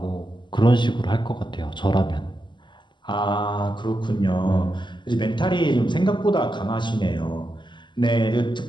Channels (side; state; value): right; late; 0.22 ms